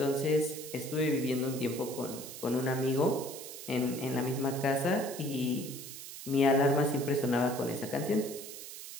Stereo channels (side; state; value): right; noise; hiss, 11 dB below the sound